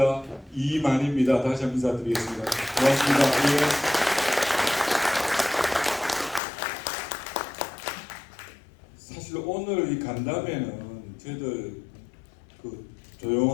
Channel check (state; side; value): drops out; right; at 6.4 s